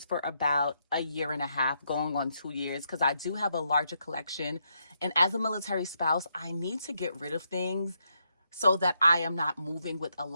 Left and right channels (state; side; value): inverted; both; correlation -0.78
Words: for about a year and a half, going on 2 years, because I do have a larger collection. And as a military spouse, I need to get rid of things so that I am not moving with a